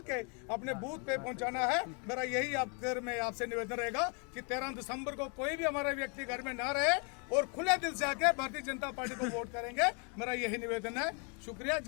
के अपने बूथ पे पहुंचाना है। मेरा यही मैं आपसे निवेदन रहेगा कि 13 दिसंबर को कोई भी हमारा व्यक्ति घर में ना रहे, और खुले दिल से आके भारतीय जनता पार्टी को वोट करेंगे। मेरा यही निवेदन है। शुक्रिया,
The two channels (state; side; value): quieter; right; 36.6 dB